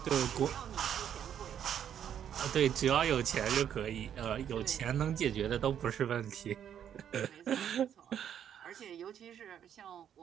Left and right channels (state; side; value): quieter; left; 9.4 dB